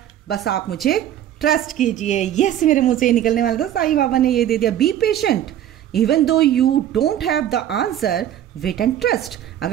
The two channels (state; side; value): quieter; left; 11.2 dB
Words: बस आप मुझे ट्रस्ट कीजिए। यस, मेरे मुंह से ये निकलने वाला था, साईं बाबा ने ये दे दिया। Be patient even though you don't have the answer, wait and trust.